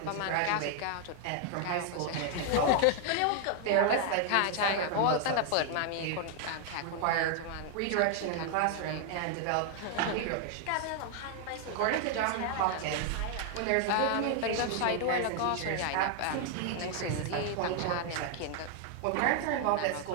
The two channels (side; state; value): both; different; correlation 0.00